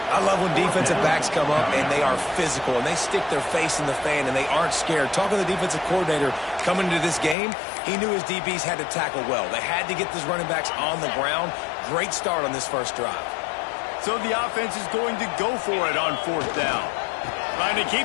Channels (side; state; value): right; drops out; at 7.4 s